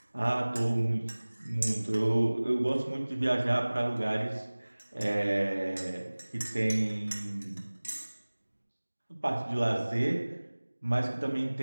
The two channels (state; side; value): inverted; both; correlation -1.00